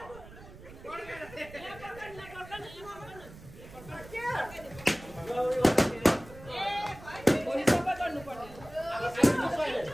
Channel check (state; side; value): noise; right; rumble, 18 dB below the sound